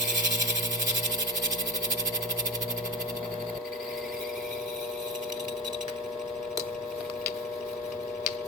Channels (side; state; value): both; normal; correlation 0.25